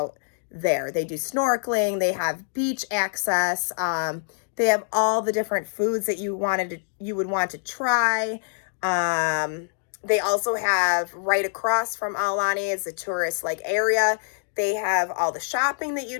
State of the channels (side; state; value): right; silent; digital silence